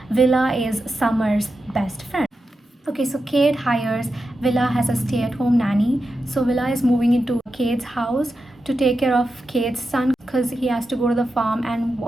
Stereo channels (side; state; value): both; normal; correlation 0.89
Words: Willa is Summer's best friend. Okay, so Cade hires Willa as a stay-at-home nanny. So Willa is moving into Cade's house to take care of Cade's son because he has to go to the farm and